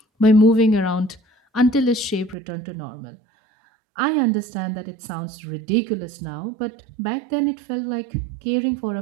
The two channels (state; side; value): drops out; left; at 2.4 s